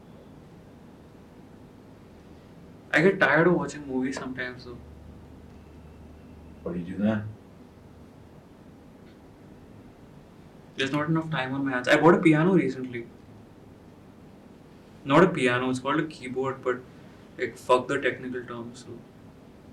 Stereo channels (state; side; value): identical; both; correlation 1.00